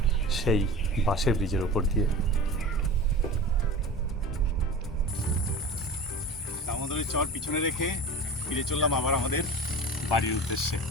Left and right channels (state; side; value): normal; both; correlation 0.34